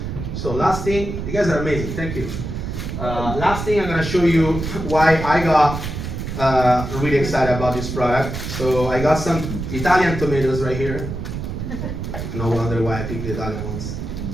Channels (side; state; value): right; noise; rumble, 5 dB below the sound